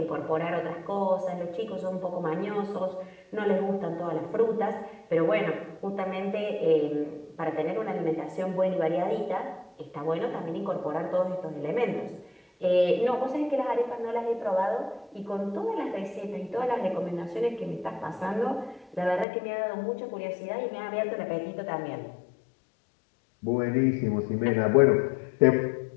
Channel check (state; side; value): drops out; right; at 19.2 s